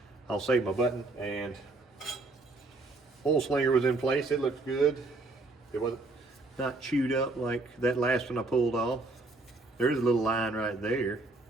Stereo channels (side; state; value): left; quieter; 3.2 dB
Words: I'll save my button, and oil slinger was in place. It looked good. It wasn't not chewed up like that last one I pulled off. There's a little line right there,